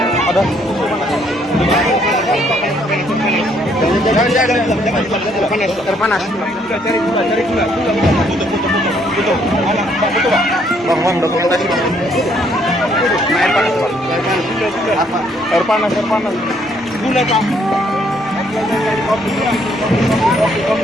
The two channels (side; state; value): both; normal; correlation 0.68